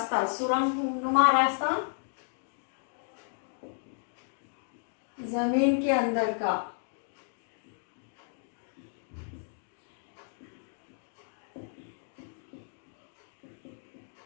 सुरंगनुमा रास्ता जमीन के अंदर का।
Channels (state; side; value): silent; right; digital silence